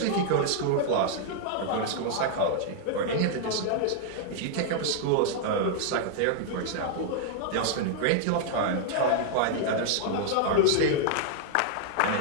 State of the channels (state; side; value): different; both; correlation 0.00